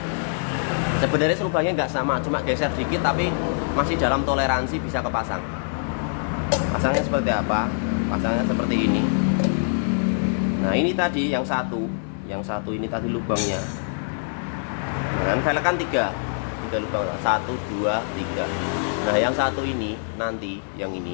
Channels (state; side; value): silent; right; digital silence